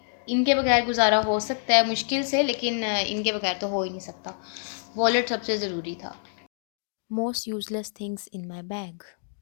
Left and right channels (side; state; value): right; silent; digital silence